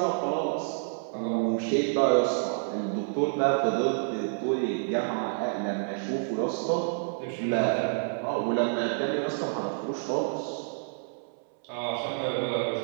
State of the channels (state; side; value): silent; left; 59 dB below the other